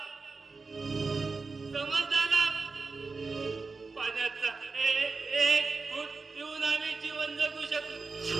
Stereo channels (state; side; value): quieter; left; 4.2 dB